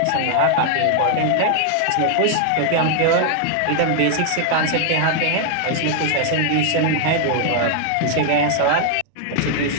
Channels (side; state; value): both; different; correlation 0.00